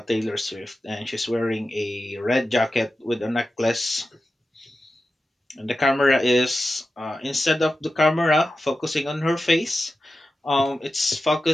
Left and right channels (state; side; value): normal; both; correlation 0.92